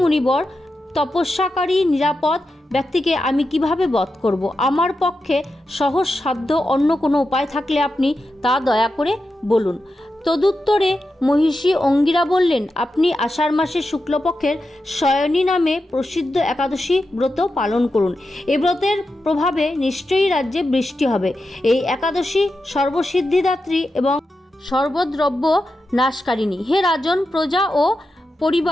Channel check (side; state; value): both; normal; correlation 0.89